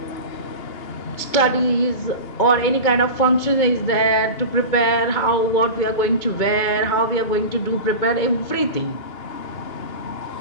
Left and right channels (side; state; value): right; late; 2.2 ms